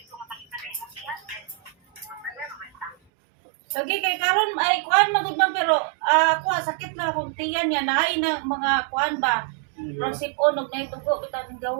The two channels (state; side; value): drops out; left; at 3.0 s